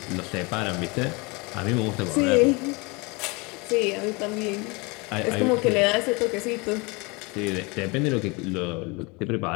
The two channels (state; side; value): quieter; right; 27.7 dB